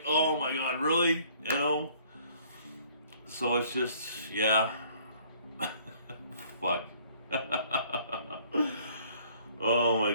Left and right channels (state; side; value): inverted; both; correlation -0.58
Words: oh my god, really? You know? So it's just, yeah. Fuck. Oh my